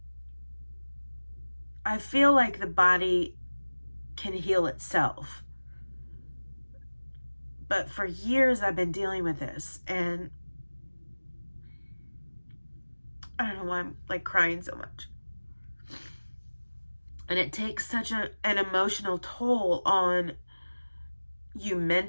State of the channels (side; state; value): both; inverted; correlation -1.00